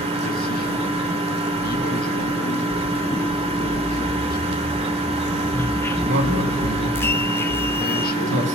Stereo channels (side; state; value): both; normal; correlation 0.51